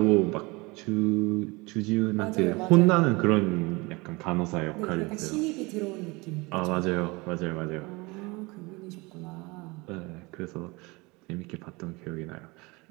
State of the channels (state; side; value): quieter; left; 24.8 dB